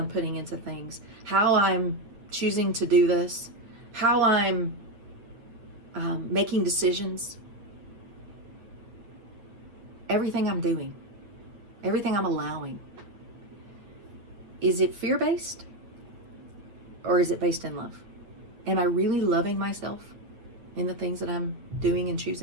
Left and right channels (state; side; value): late; left; 8.6 ms